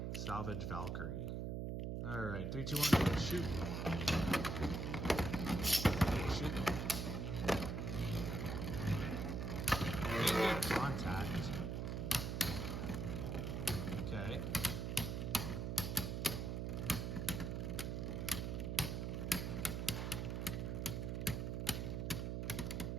Salvage Valkyrie. All right, 3, 2, 1, shoot. Shoot. Good contact. Okay.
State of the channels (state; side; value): noise; right; hum, 2 dB below the sound